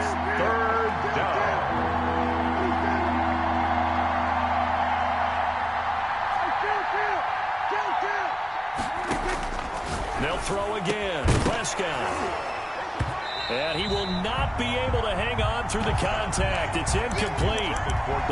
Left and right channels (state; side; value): identical; both; correlation 1.00